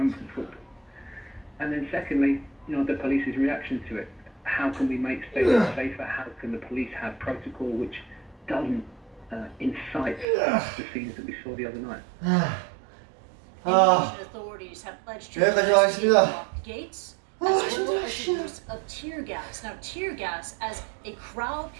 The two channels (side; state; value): left; drops out; at 10.2 s